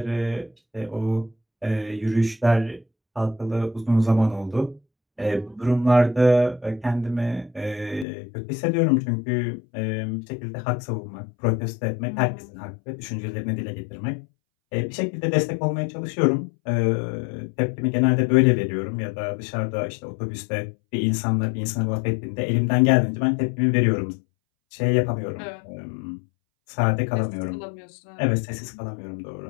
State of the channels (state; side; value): drops out; right; at 8.1 s